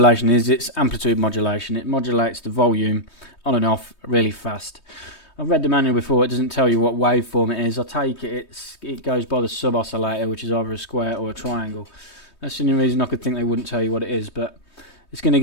is, it's amplitude modulation. It modulates the volume on and off really fast. I've read the manual before, it doesn't tell you what waveform it is. I take it goes by the sub oscillator, which is either a square or a triangle. That's the only reason I could think they wouldn't tell you what it is, but it's going to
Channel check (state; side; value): late; right; 3.2 ms